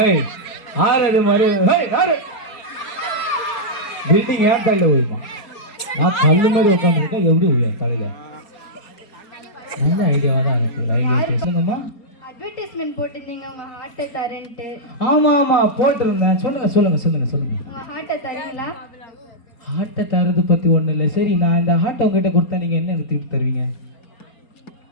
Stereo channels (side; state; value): right; late; 4.3 ms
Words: ஆறு மாதிரி பில்டிங் ஏன் தலையில் ஊழிமா? நான் கல்லு மாதிரி உட்காந்துருக்கேன், எப்படி ஊழியம் தலையில்? நல்ல ஐடியாவாக தான் இருக்கு. ரயில்வே ஸ்டேஷனுங்கம்மா அட்வர்டைஸ்மெண்ட் போட்டிருந்தீங்க உங்க ஹார்ட்டை தரேன்ட்டு. ஆமா போட்டிருந்தேன். சொல்லுங்க. ஹார்ட்டை தரீங்களா? ஹார்ட்டை தரது பத்தி ஒண்ணு இல்லை. சரி, நான் இந்த ஹார்ட்டை உங்ககிட்ட கொடுத்தா நீங்க என்ன எனக்கு திருப்பி தருவீங்க?